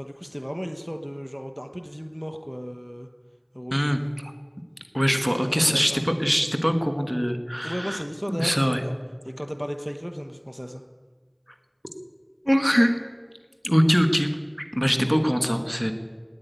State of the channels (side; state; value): both; identical; correlation 1.00